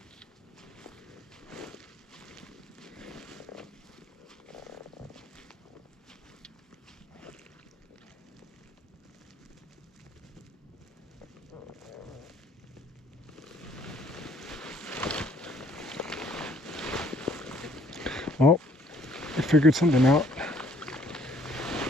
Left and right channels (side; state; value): both; normal; correlation 0.62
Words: Oh, I figured something out.